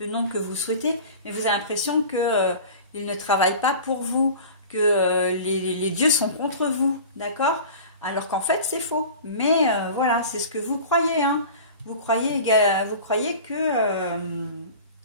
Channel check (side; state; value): both; inverted; correlation -0.38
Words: nom que vous souhaitez, mais vous avez l'impression qu'il ne travaille pas pour vous, que les dieux sont contre vous, d'accord? Alors qu'en fait, c'est faux. Mais voilà, c'est ce que vous croyez, hein. Vous croyez que vous